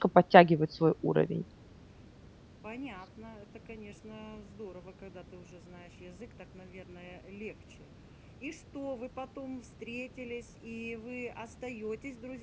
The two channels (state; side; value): identical; both; correlation 1.00